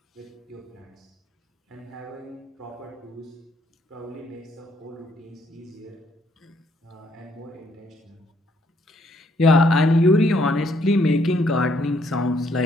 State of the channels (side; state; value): both; normal; correlation 0.69